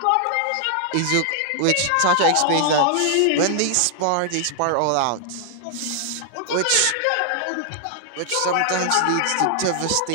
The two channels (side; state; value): both; different; correlation 0.00